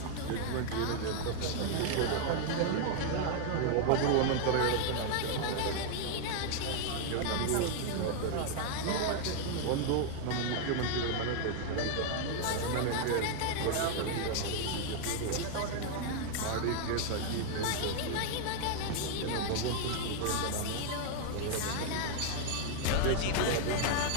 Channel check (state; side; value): different; both; correlation 0.00